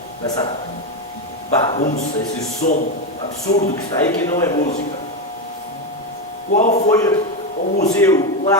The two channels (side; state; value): both; normal; correlation 0.11